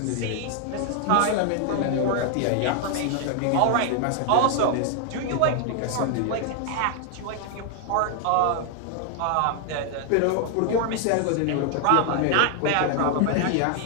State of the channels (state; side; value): different; both; correlation 0.00